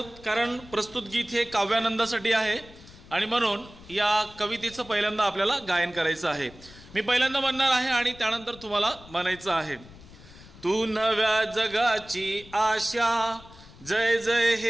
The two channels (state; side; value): noise; left; rumble, 20 dB below the sound